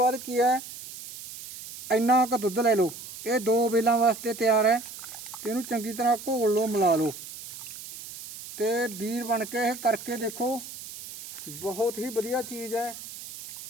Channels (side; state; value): right; noise; hiss, 13 dB below the sound